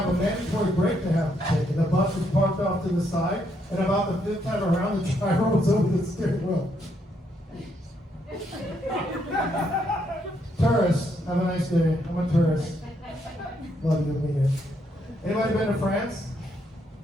a mandatory break they have to take, and the bus was parked off to the side, and about the fifth time around, the driver was over the steering wheel. Tourists, have a nice day. I'm a tourist. Love you, mean it. Anybody been to France?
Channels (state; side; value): normal; both; correlation 0.75